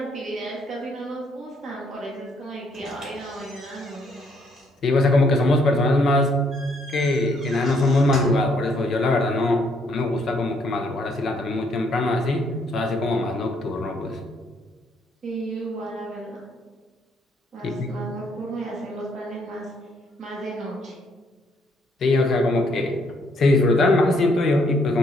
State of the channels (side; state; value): both; normal; correlation 0.69